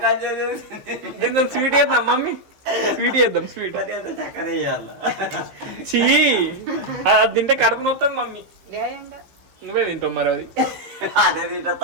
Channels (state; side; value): late; left; 15 ms